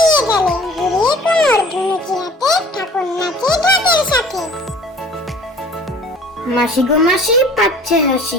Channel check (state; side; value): normal; both; correlation 0.49